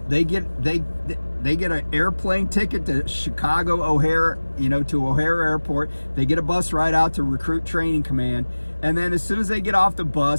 they get an airplane ticket to Chicago O'Hare, to O'Hare Airport. They get a bus ride out to Recruit Training Command, and then as soon as they get off the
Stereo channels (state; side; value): inverted; both; correlation -1.00